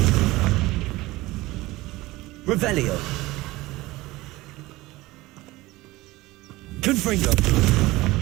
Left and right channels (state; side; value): quieter; left; 19.5 dB